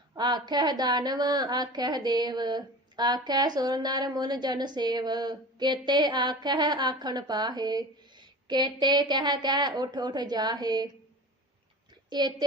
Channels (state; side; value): normal; both; correlation 0.35